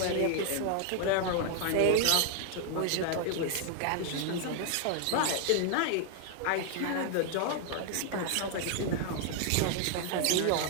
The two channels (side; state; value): both; different; correlation 0.00